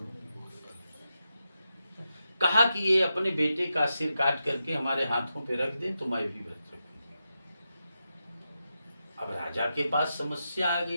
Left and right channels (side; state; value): both; inverted; correlation -0.88